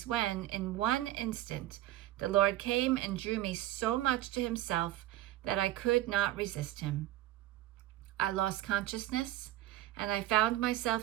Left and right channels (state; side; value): quieter; left; 14.9 dB